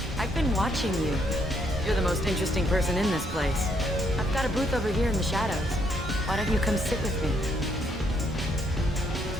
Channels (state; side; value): normal; both; correlation 0.72